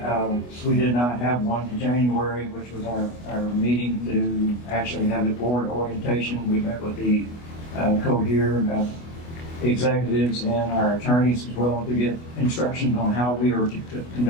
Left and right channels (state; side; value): late; right; 24 ms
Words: We did not have one in January, which was our meeting to actually have the board orientation. We met with the Cohere executives and our attorneys as well to get instructions on how we are to